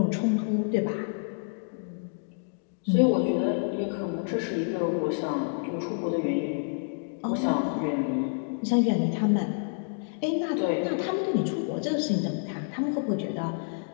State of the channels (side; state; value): right; silent; digital silence